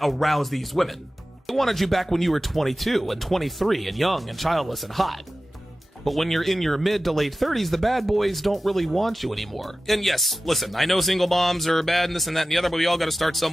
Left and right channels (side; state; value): both; normal; correlation 0.95